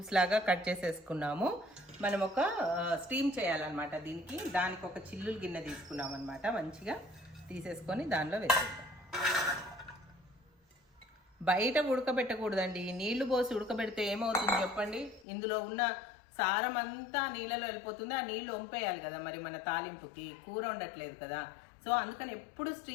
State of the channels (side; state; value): right; drops out; at 15.2 s